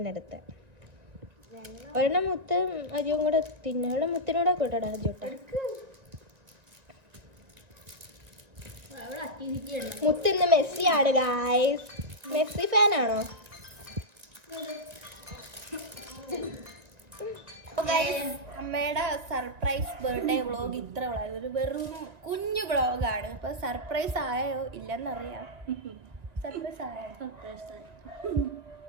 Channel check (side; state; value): left; late; 1.9 ms